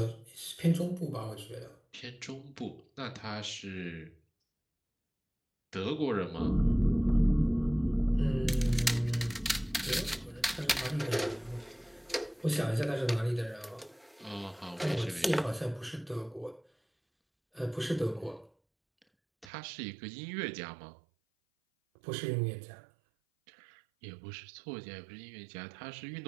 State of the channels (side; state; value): left; drops out; at 19.5 s